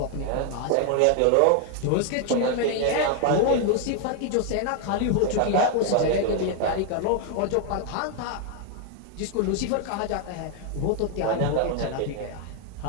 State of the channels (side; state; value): both; different; correlation 0.00